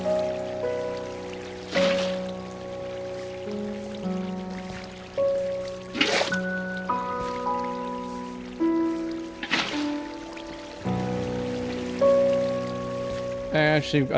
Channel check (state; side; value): identical; both; correlation 1.00